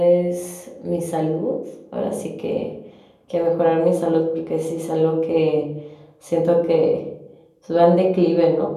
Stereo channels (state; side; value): identical; both; correlation 1.00